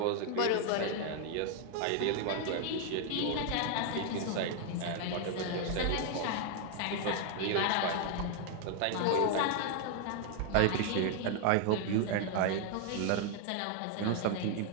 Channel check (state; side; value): different; both; correlation 0.00